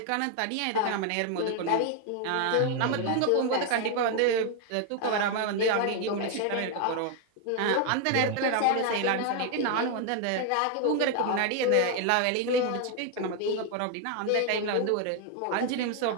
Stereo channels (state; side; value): different; both; correlation 0.00